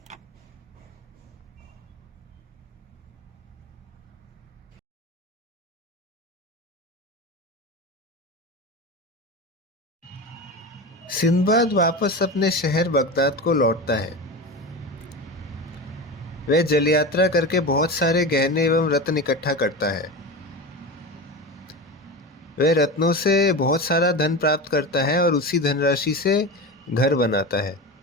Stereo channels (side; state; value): both; normal; correlation 0.25